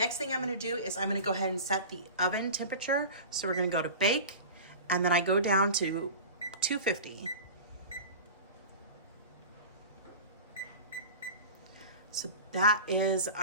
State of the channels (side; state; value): both; inverted; correlation -0.34